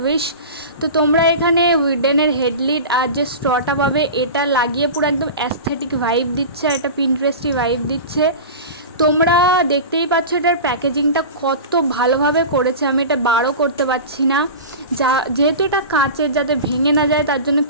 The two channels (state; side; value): inverted; both; correlation -0.30